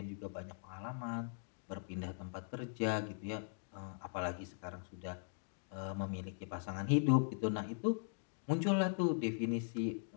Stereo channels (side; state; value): right; silent; digital silence